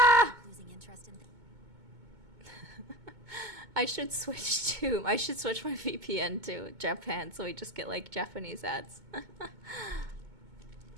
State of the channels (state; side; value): late; left; 2.2 ms